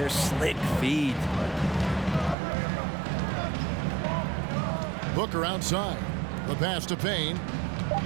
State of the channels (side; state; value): left; drops out; at 2.4 s